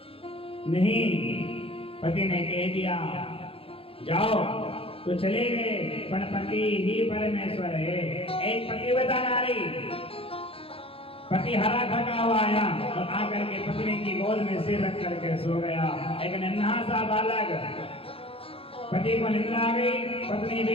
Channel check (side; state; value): right; late; 0.27 ms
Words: नहीं। पति ने कह दिया जाओ तो चले गए, पर पति ही परमेश्वर है। एक पतिव्रता नारी, पति हरा थका हुआ आया और आकर के पत्नी की गोद में सिर रख करके सो गया। एक नन्हा सा बालक, पति को निद्रा आ गई, पत्नी